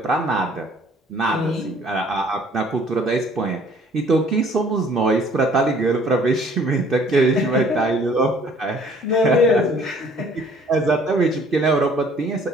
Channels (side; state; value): both; normal; correlation 0.56